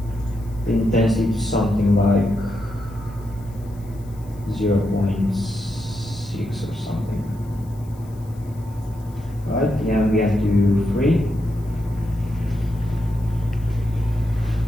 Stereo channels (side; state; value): left; noise; hiss, 28 dB below the sound